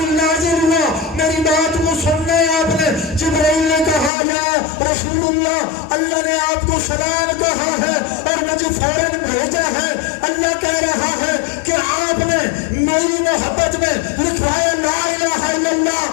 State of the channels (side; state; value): right; drops out; at 4.1 s